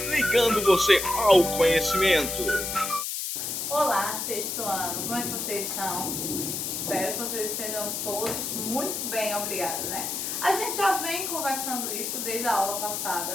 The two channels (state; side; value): noise; left; hiss, 3 dB below the sound